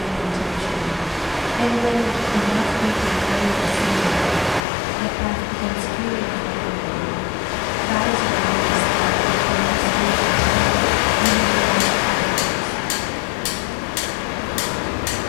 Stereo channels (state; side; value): drops out; right; at 4.6 s